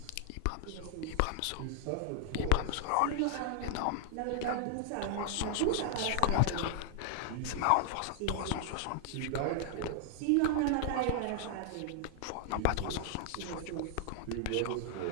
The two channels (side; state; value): both; different; correlation -0.01